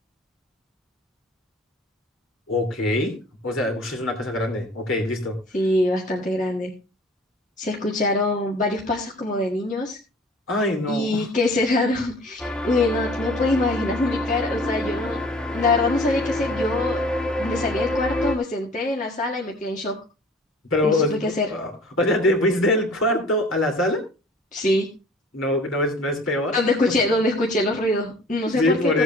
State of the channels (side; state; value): both; normal; correlation 0.49